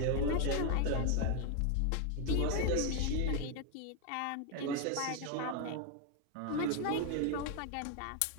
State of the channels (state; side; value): different; both; correlation 0.01